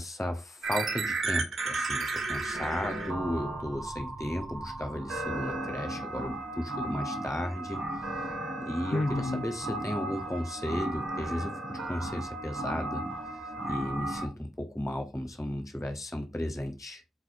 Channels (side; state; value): both; normal; correlation 0.83